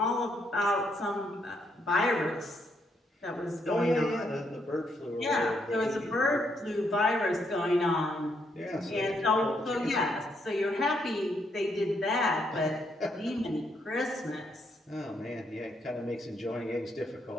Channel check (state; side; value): normal; both; correlation 0.75